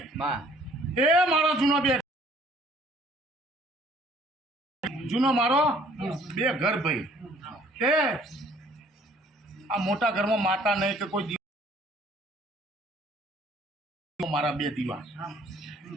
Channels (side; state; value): both; normal; correlation 0.58